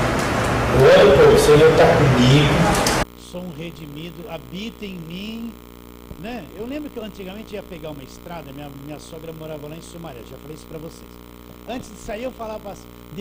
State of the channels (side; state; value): both; identical; correlation 1.00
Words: Eu oro, pô, o Senhor está comigo. Sou um redimido, habita em mim, né? Eu lembro que eu antigamente ia pegar uma estrada, minha sogra morava lá em Sumaré, já falei isso para vocês. Antes de sair eu falava assim: